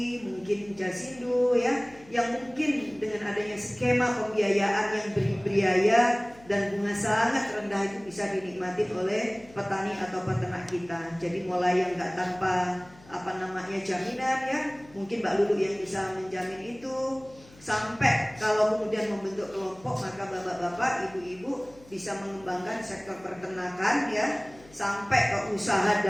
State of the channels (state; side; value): noise; left; hum, 24 dB below the sound